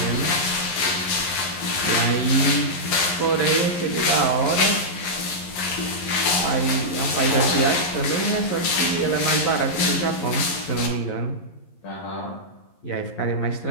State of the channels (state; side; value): late; right; 11 ms